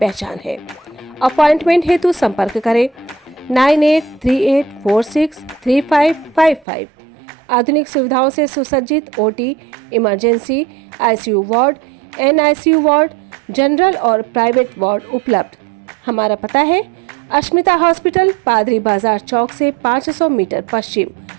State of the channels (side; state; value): left; drops out; at 6.7 s